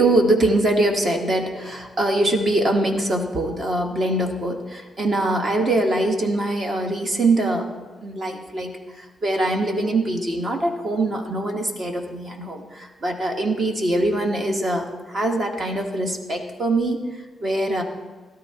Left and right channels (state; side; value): normal; both; correlation 0.74